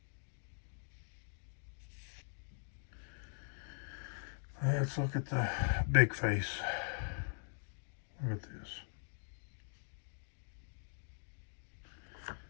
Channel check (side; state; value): right; silent; digital silence